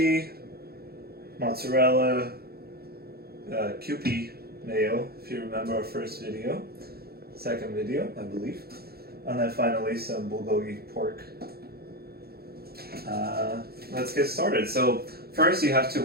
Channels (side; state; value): left; late; 0.45 ms